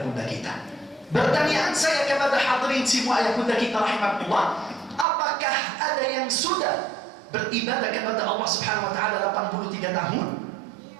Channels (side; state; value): left; drops out; at 5.1 s